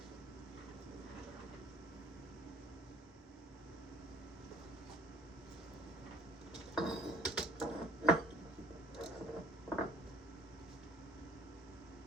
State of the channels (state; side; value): normal; both; correlation 0.54